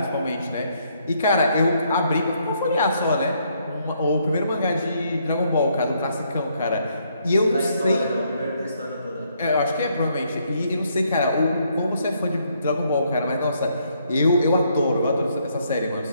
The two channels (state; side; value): inverted; both; correlation -0.72